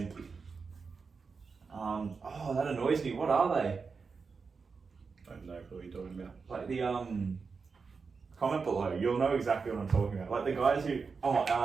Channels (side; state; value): left; quieter; 5.0 dB